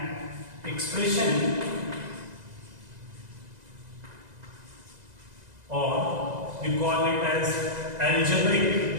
expression or we call it as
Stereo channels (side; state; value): left; late; 2.0 ms